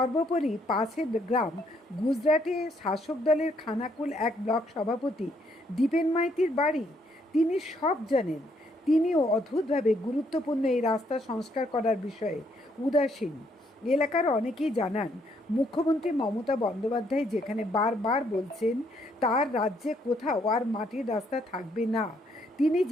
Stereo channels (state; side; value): normal; both; correlation 0.70